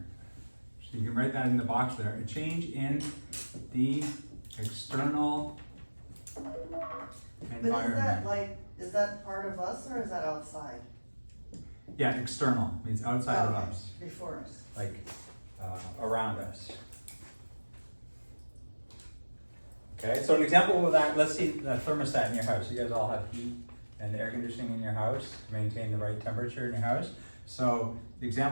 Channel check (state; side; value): inverted; both; correlation -1.00